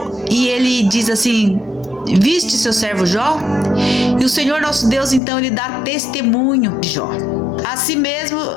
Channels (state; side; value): drops out; right; at 5.2 s